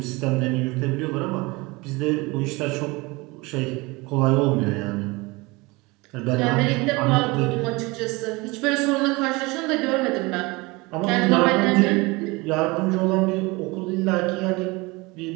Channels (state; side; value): quieter; left; 24.1 dB